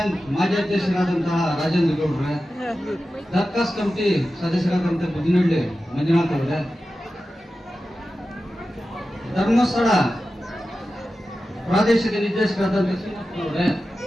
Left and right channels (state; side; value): normal; both; correlation 0.93